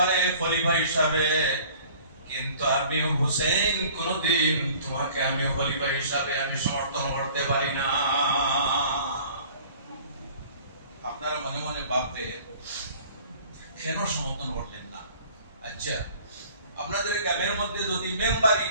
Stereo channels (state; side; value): inverted; both; correlation -0.50